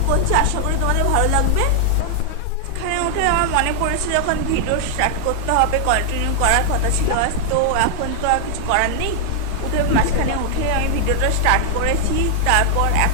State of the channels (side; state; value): both; different; correlation 0.00